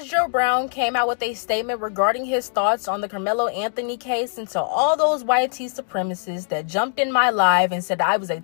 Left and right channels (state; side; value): silent; right; digital silence